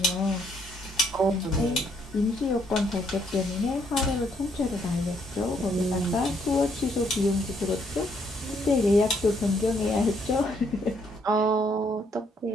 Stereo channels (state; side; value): normal; both; correlation 0.70